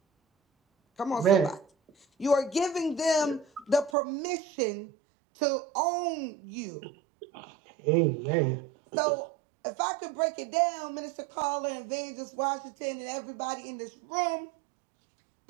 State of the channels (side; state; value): left; drops out; at 3.9 s